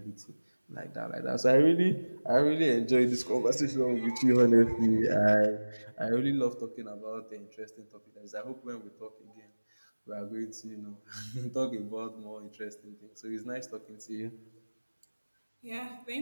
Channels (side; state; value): both; inverted; correlation -1.00